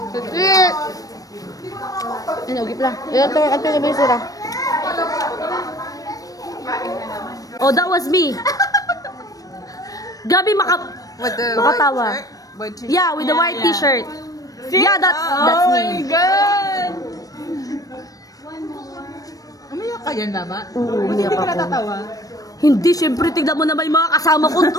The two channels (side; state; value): right; late; 0.17 ms